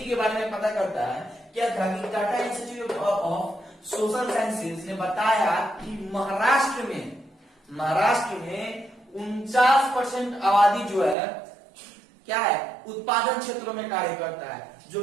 के बारे में पता करता है। क्या था कि Tata institute of social sciences ने बताया कि महाराष्ट्र में 49% आबादी जो है क्या है, उत्पादन क्षेत्रों में कार्य करता है, जो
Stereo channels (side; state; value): left; drops out; at 11.2 s